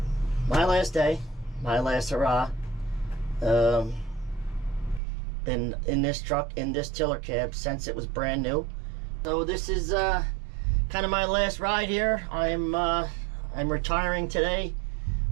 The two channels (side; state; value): left; drops out; at 5.0 s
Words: my last day, my last hurrah. Been in this truck, in this tiller cab since it was brand new. So this is kind of my last ride here. I'm retiring today.